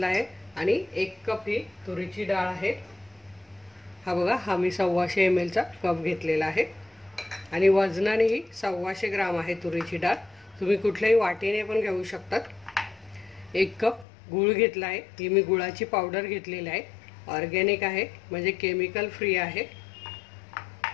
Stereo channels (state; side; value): drops out; right; at 14.1 s